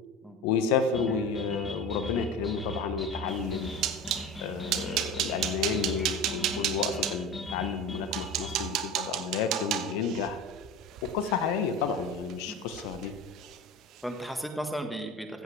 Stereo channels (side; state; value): both; normal; correlation 0.31